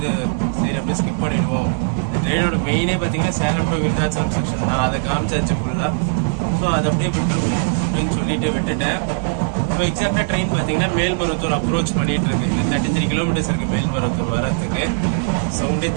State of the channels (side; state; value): left; silent; 63 dB below the other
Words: சரி அப்படியே ஸ்கிப் பண்ணிடுவோம். இந்த ட்ரெயினோட மெயினே பார்த்தீங்கன்னா சேலம் டு விருதாச்சலம் செக்ஷன் தான். அதை காமிச்சாச்சு ஃபுல்லாக. ஸோ அதை அப்படியே விட்டுருவோம் அப்படின்னு சொல்லிட்டு விட்டுட்டேன். இப்போ எக்ஸாக்டாக ட்ரெயின் பார்த்தீங்கன்னா மேல்மருவத்தூர் அப்ரோச் பண்ணிட்டு இருக்கு. இது 33 கிலோமீட்டர்ஸ் இருக்குது மேல்மருவத்தூர் வரத்துக்கு. சவுண்டே